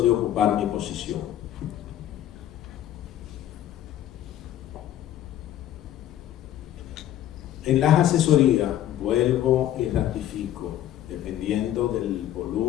de ocupar mi posición. En las asesorías, vuelvo y ratifico, dependiendo del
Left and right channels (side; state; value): right; quieter; 12.0 dB